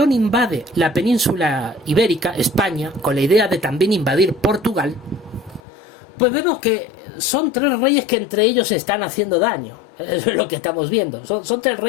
invade la península ibérica, España, con la idea de también invadir Portugal, pues vemos que son tres reyes que entre ellos se están haciendo daño. Es lo que estamos viendo. Son tres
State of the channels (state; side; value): drops out; right; at 5.6 s